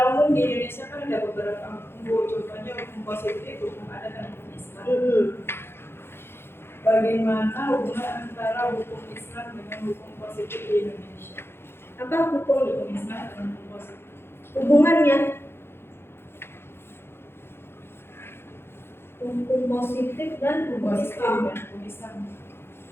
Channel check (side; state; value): right; late; 0.11 ms